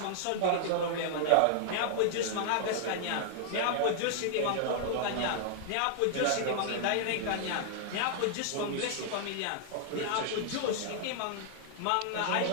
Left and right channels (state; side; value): different; both; correlation -0.01